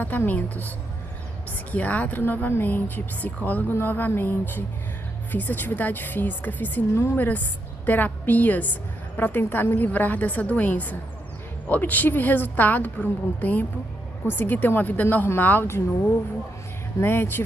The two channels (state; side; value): normal; both; correlation 0.80